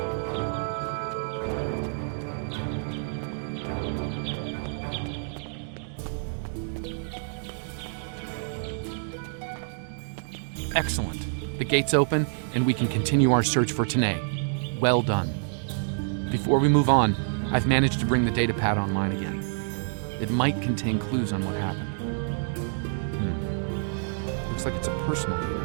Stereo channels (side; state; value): left; silent; digital silence